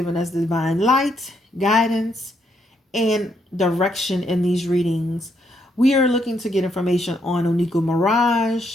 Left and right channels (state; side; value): normal; both; correlation 0.75